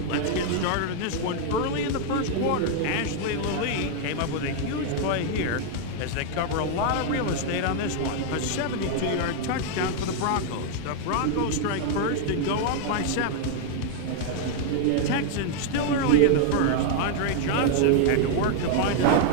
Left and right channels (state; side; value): different; both; correlation 0.00